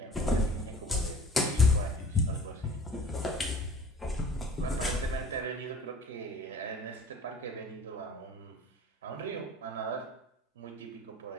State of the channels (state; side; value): normal; both; correlation 0.45